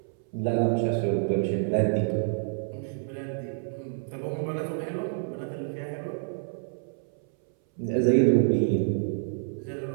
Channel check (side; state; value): left; silent; 59 dB below the other